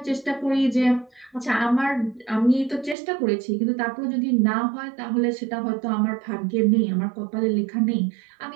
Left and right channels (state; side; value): drops out; left; at 3.0 s